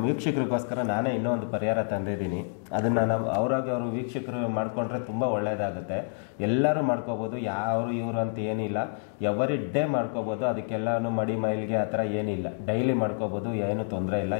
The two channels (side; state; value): right; silent; digital silence